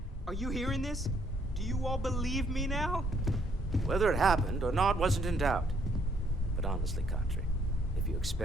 Are you hearing this? Do you all believe me now? Whether it happened or not wasn't in doubt. But honestly, Kadri, if you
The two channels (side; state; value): both; normal; correlation 0.68